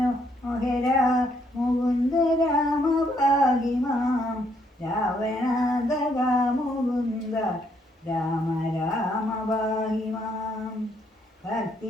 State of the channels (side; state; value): both; normal; correlation 0.71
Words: മുകുന്ദ രാമ പാഹി മാം രാവണാന്തക മുകുന്ദ രാമ രാമ പാഹി മാം